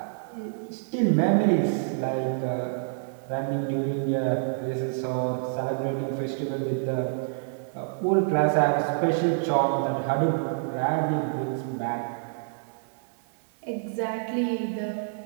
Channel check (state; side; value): silent; left; 57 dB below the other